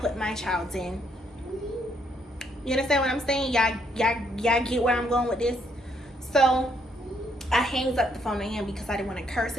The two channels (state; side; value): normal; both; correlation 0.72